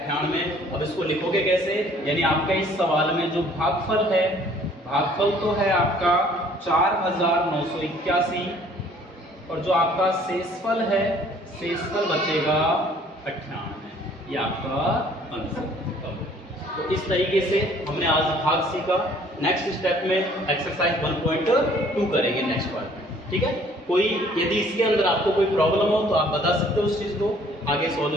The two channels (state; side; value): normal; both; correlation 0.57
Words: 98। अब इसको लिखोगे कैसे? यानी आपका इस सवाल में जो भागफल है, भागफल तो है आपका 4981, और जो आपका शेषफल है, शेषफल बचेगा 98। ये आपका आंसर। तो इस तरीके से हमने आज भाग सीखा। नेक्स्ट स्टेप में एक्सरसाइज 1.2 करेंगे नेक्स्ट पार्ट में। ठीक है, कोई यदि इसके अंदर आपको कोई प्रॉब्लम हो तो आप बता सकते हो उस चीज को, आगे